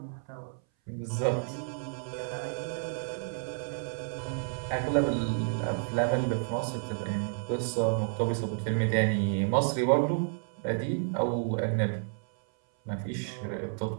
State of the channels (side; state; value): left; silent; 57 dB below the other